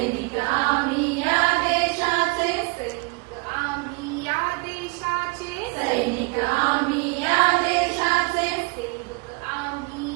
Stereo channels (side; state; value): left; quieter; 30.0 dB